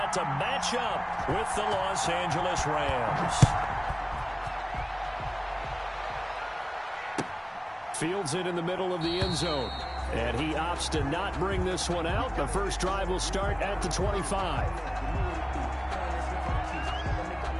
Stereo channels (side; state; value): both; identical; correlation 1.00